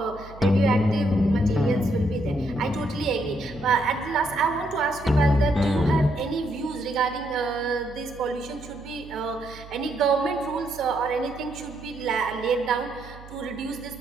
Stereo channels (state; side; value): noise; right; hum, 18 dB below the sound